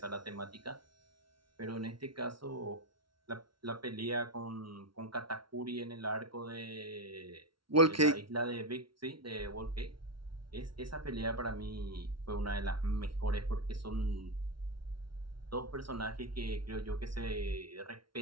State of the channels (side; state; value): left; late; 0.74 ms